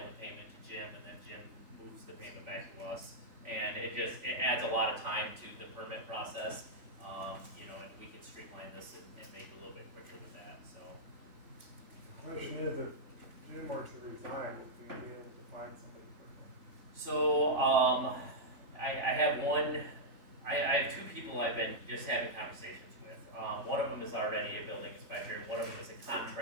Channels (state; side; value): late; left; 3.5 ms